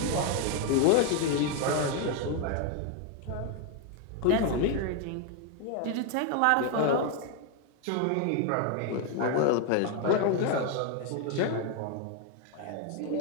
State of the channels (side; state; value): both; different; correlation 0.01